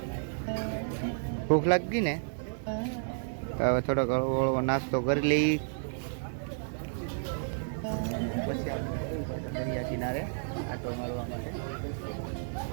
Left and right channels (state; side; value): silent; left; 57 dB below the other